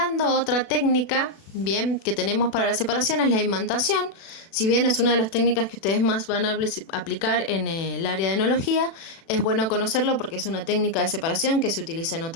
otra técnica, bien, que tenemos para la separación es la imantación. Si bien es una de las técnicas que ustedes más van a aplicar en el área de enología, es bueno conocerlo porque es una técnica de separación que se utiliza en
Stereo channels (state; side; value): late; right; 36 ms